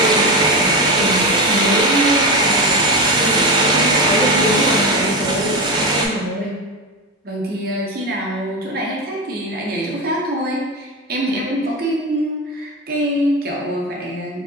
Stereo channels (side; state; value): both; normal; correlation 0.17